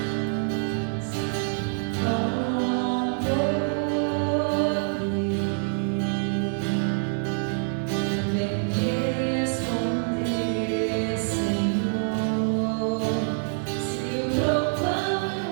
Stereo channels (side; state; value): left; silent; digital silence